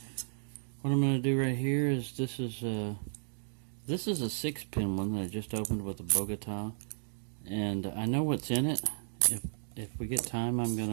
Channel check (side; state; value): left; silent; digital silence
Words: What I'm going to do right here is this is a 6-pin one that I just opened with a Bogota, and I know what's in it. If we get time, I'm